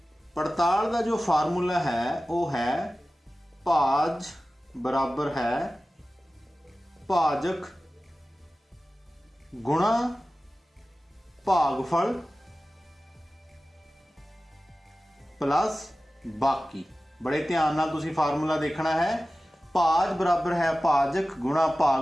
पड़ताल दा जो फार्मूला है वो है भाज बराबर है भाजक गुणा भागफल प्लस बाकी। बड़े ध्यान नाल तुसीं फार्मूला देखना है। भाज बराबर है भाजक गुणा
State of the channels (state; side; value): normal; both; correlation 0.96